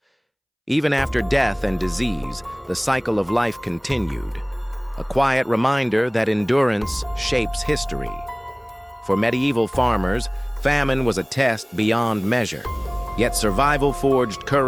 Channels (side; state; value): both; identical; correlation 1.00